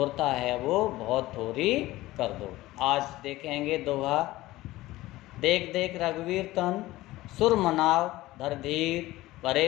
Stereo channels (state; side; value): quieter; right; 17.5 dB